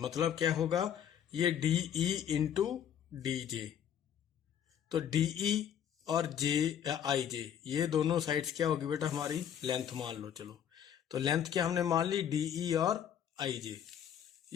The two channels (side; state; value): right; quieter; 9.3 dB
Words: क्या होगा, ये DE इंटू DJ। तो DE और IJ ये दोनों साइड्स क्या होगी बेटा, हमारी लेंथ मान लो। चलो तो लेंथ क्या हमने मान ली, DE और IJ।